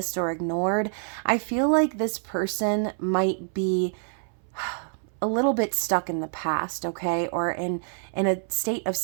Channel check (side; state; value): left; silent; 60 dB below the other